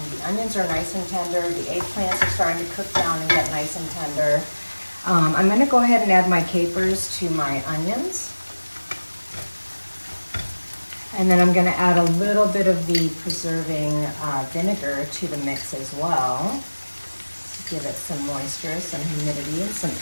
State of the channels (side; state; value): both; inverted; correlation -1.00